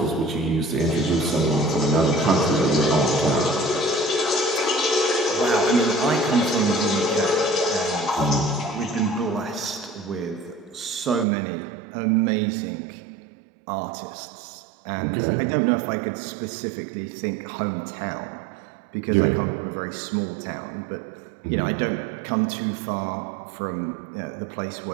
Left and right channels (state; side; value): drops out; left; at 11.2 s